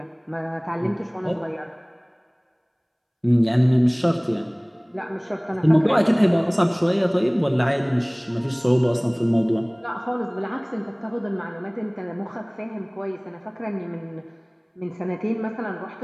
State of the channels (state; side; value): identical; both; correlation 1.00